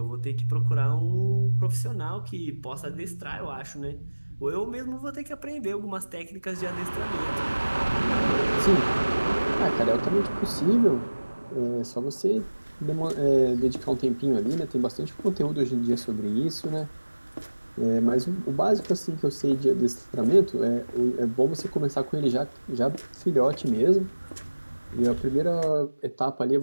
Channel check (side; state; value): both; inverted; correlation -1.00